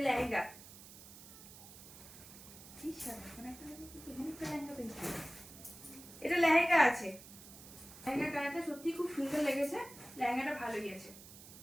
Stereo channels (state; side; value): noise; right; hiss, 17 dB below the sound